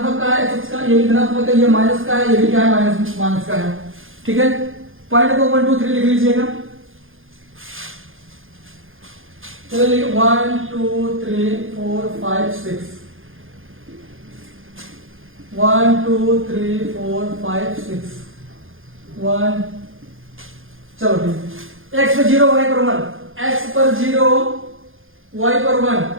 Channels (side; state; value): left; late; 0.59 ms